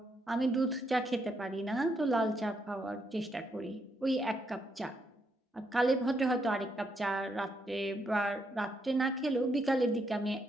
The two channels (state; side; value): normal; both; correlation 0.77